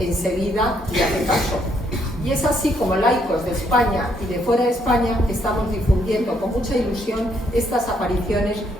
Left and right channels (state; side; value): normal; both; correlation 0.72